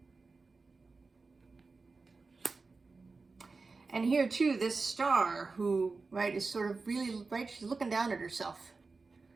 And here too, this star who, right, is sort of really, right, she's looking down at herself.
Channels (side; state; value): left; quieter; 4.1 dB